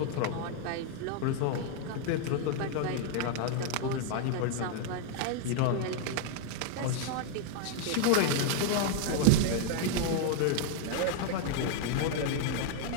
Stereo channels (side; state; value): both; different; correlation 0.00